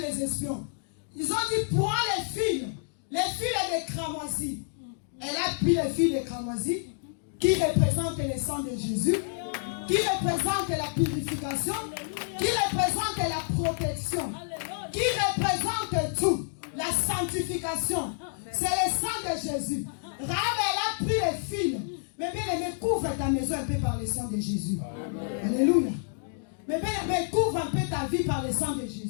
espions. Ils ont dit, prends les fils des cramoisis. Elle a pris les fils des cramoisis qui représentent le sang de Jésus, qui représentent la purification, qui représentent la protection, qui représentent tout, la sanctification. C'est le sang de Jésus. Rahab, elle a pris les fils. Mais bien aimé, couvre ta maison un peu par le sang de Jésus. Alléluia. Mais bien aimé, couvre un peu ta vie par le sang de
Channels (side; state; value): right; silent; digital silence